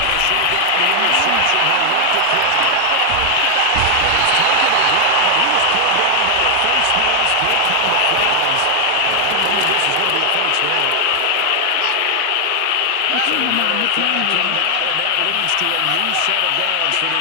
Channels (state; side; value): different; both; correlation 0.00